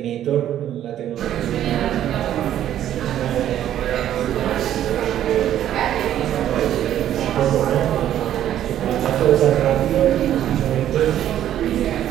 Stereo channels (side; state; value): left; quieter; 11.4 dB